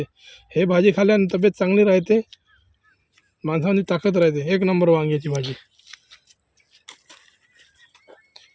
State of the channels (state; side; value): identical; both; correlation 1.00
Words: हे भाजी खाल्ल्याने तब्येत चांगली राहते, माणसाची ताकद राहते. एक नंबर वांग्याची भाजी.